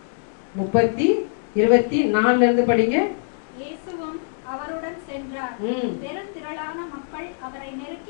24 இருந்து படிங்க. இயேசுவும் அவருடன் சென்றார். பெருந்திரளான மக்கள் அவரை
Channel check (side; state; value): right; silent; digital silence